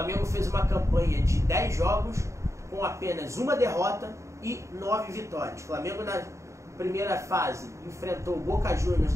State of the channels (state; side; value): late; left; 0.14 ms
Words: fez uma campanha de 10 jogos com apenas uma derrota e 9 vitórias. O Flamengo na primeira fase enfrentou o Boca Juniors